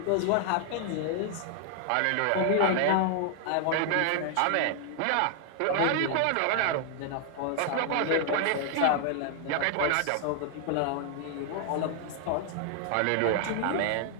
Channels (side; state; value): both; different; correlation 0.00